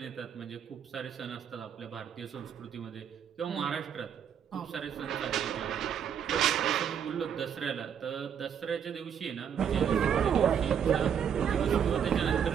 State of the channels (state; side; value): quieter; left; 8.1 dB